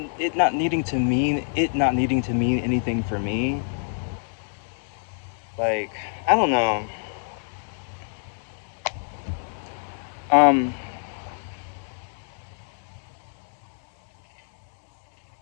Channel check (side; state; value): right; silent; digital silence